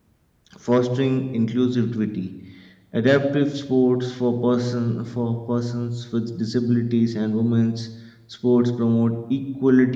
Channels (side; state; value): both; identical; correlation 1.00